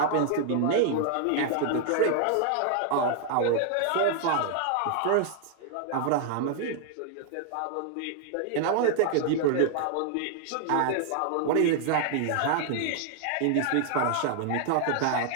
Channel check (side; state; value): both; different; correlation 0.00